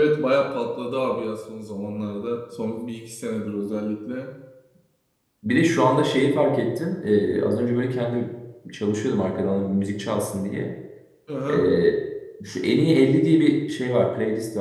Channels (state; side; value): identical; both; correlation 1.00